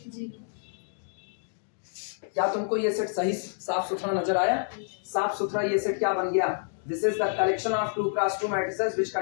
क्या तुमको ये सेट सही साफ सुथरा नजर आया? साफ सुथरा ये सेट क्या बन गया? This is the collection of 2 cross 2 matrices which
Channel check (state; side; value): silent; right; digital silence